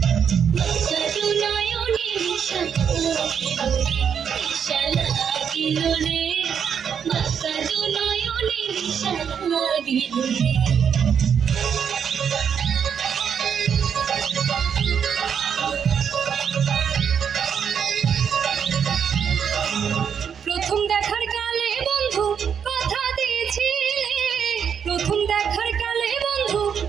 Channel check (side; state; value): left; quieter; 7.5 dB